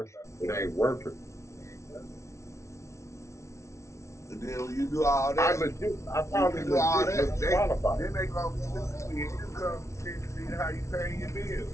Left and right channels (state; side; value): late; right; 0.14 ms